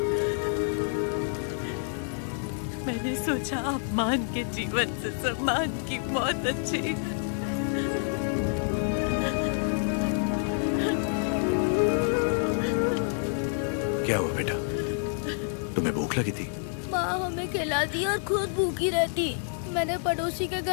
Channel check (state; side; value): silent; right; 59 dB below the other